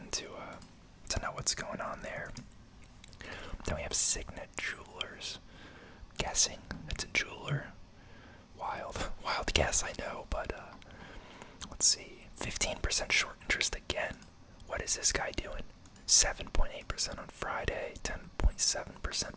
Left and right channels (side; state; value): both; identical; correlation 1.00